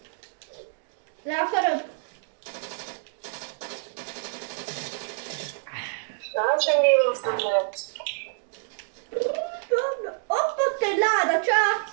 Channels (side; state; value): left; silent; digital silence